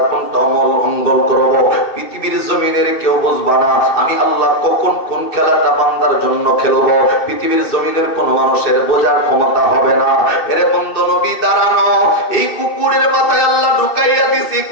কন্ট্রোল করব। পৃথিবীর জমিনের কেউ বুঝবা না আমি আল্লাহ কখন কোন খেলাটা বান্দার জন্য খেলবো। পৃথিবীর জমিনের কোন মানুষের বোঝার ক্ষমতা হবে না। এরে বন্ধু নবী দাঁড়ানো, এই কুকুরের মাথায় আল্লাহ ঢুকাইয়া দিছি,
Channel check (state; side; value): late; right; 2.7 ms